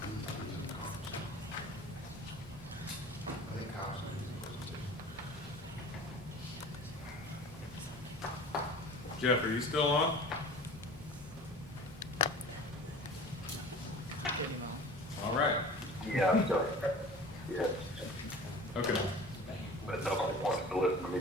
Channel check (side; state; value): both; normal; correlation 0.40